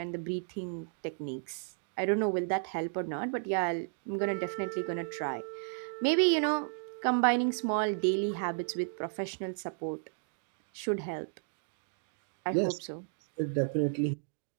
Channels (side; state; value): left; silent; digital silence